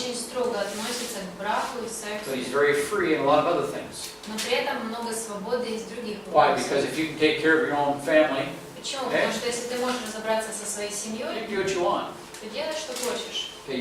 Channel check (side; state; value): both; identical; correlation 1.00